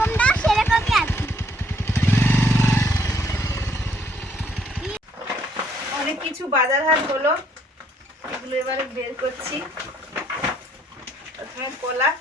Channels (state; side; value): normal; both; correlation 0.67